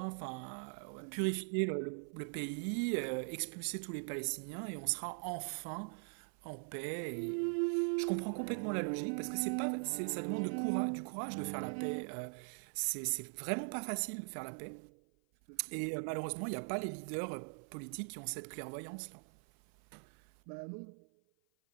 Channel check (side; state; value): left; silent; 50 dB below the other